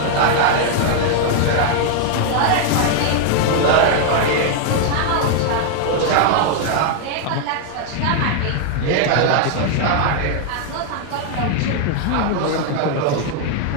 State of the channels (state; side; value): different; both; correlation 0.00